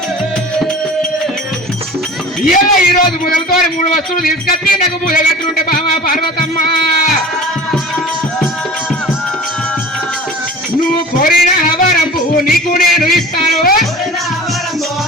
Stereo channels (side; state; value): both; normal; correlation 0.40